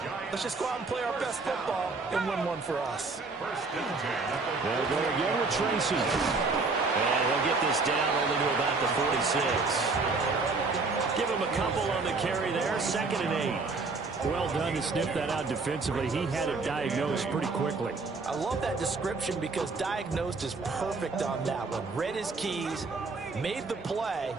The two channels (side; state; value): left; quieter; 4.0 dB